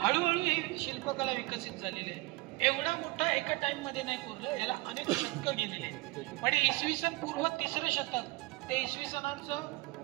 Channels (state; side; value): quieter; left; 22.9 dB